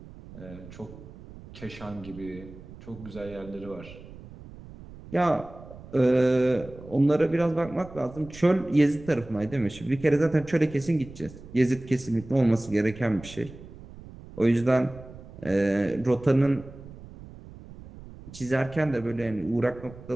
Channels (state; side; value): noise; right; rumble, 17 dB below the sound